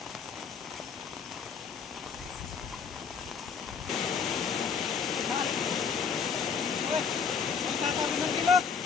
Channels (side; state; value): right; quieter; 6.2 dB